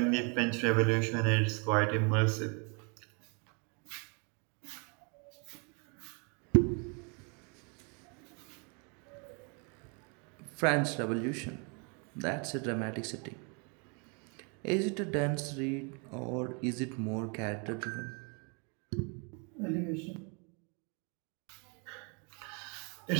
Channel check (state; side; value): quieter; left; 34.8 dB